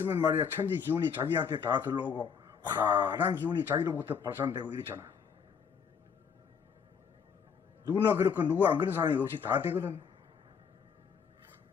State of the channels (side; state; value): right; quieter; 6.6 dB